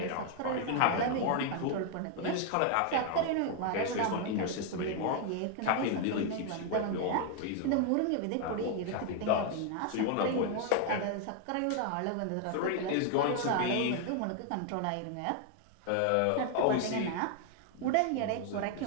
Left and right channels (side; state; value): both; different; correlation 0.00